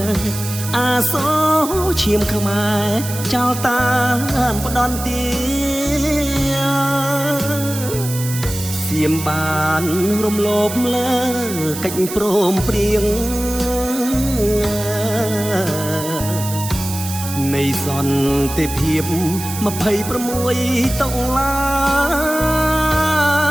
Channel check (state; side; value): noise; right; hiss, 9 dB below the sound